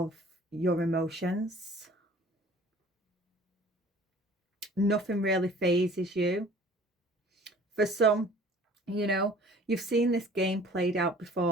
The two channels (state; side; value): normal; both; correlation 0.49